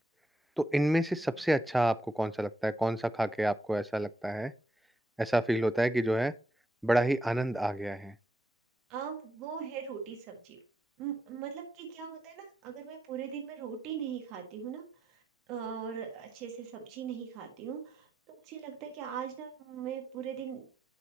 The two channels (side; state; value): both; normal; correlation 0.84